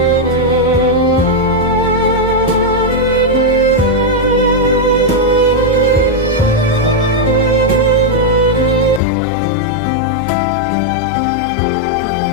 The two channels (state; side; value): drops out; right; at 9.0 s